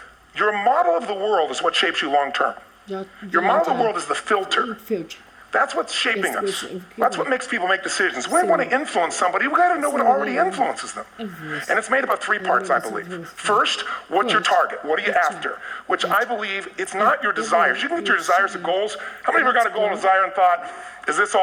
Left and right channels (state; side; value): identical; both; correlation 1.00